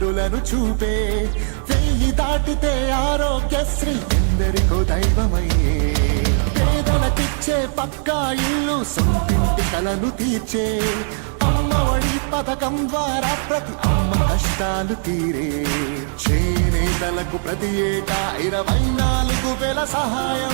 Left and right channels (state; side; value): silent; left; 65 dB below the other